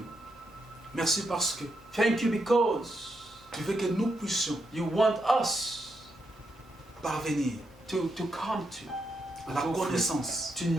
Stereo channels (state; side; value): normal; both; correlation 0.82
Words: Merci parce que Thank you because tu veux que nous puissions you want us parvenir to come to à la connaissance to